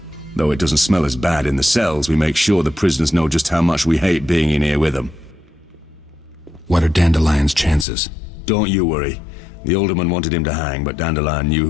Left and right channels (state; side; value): drops out; right; at 7.9 s